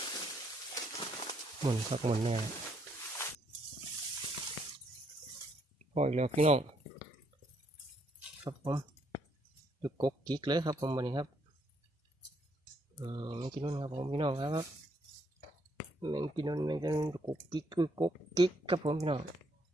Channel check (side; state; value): both; normal; correlation 0.72